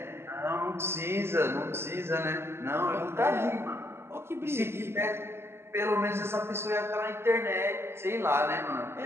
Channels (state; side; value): late; left; 0.12 ms